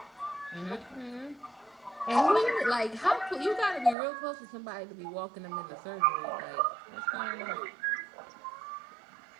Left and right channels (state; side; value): drops out; left; at 4.0 s